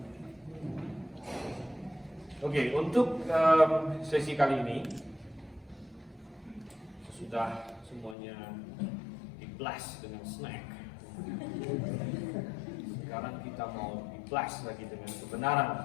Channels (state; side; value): drops out; right; at 8.2 s